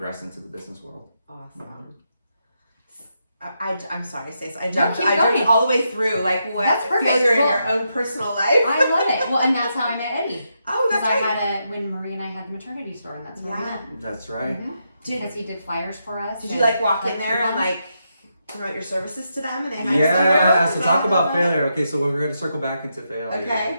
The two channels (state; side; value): inverted; both; correlation -0.83